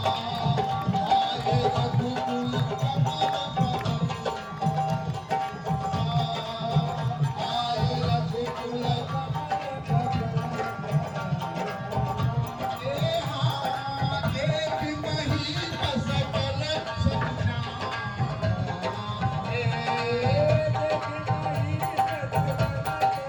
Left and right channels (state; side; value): identical; both; correlation 1.00